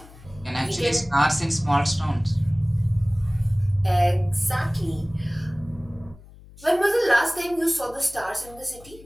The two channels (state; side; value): noise; left; hum, 21 dB below the sound